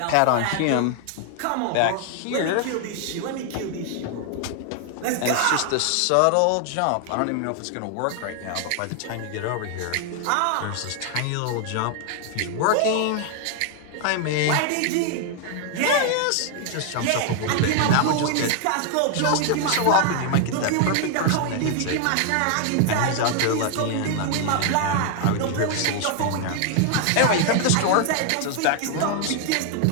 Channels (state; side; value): different; both; correlation 0.00